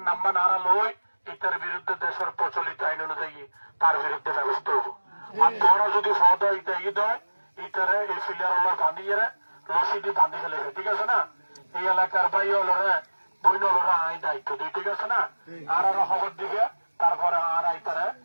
নাম্বার নারা লই এটার বিরুদ্ধে দেশের প্রচলিত আইন অনুযায়ী তার বিরুদ্ধে ব্যবস্থা হবো আর তোরা যদি ফদ এটা ই দেয় এটারে এই ফিলিয়ার বাঁধিয়ে রশিদি বাঁধি ফেলেছে ঠিক আছে না এই এলাকার ভাই হলরে বইন হলরা আই দায়িত্ব দিই ঠিক আছে না আর আরো খবর দিবে তারপরে আর আইতারে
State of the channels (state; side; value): inverted; both; correlation -1.00